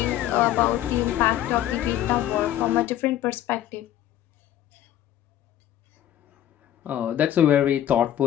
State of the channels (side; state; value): right; quieter; 12.1 dB